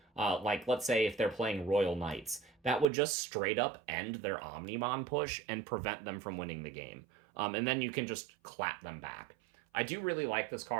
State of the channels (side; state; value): left; drops out; at 2.9 s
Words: Like, let's say if they're playing Royal Knights, that would just straight up end their Omnimon push and prevent them from winning the game. And then you can just clap them back. I do really like this